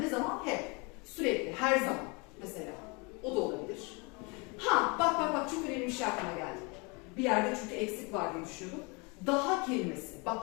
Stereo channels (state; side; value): quieter; right; 29.5 dB